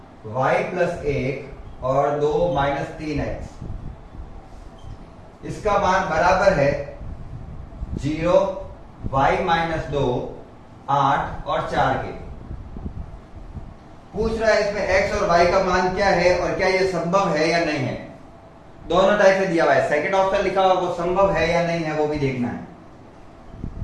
y + 1 और 2 - 3x, इसका मान बराबर है 0 y - 2 8 और 4 के। पूछ रहा है इसमें x और y का मान क्या है और क्या ये संभव है या नहीं है। दोनों टाइप से दिया हुआ है, सेकंड ऑप्शन लिखा हुआ वो संभव है या नहीं है वो भी देखना है।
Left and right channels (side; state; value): both; identical; correlation 1.00